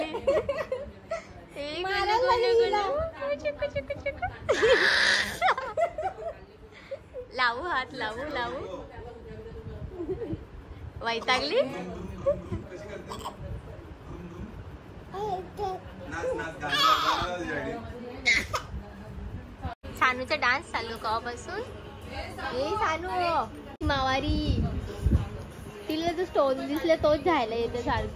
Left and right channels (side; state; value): both; identical; correlation 1.00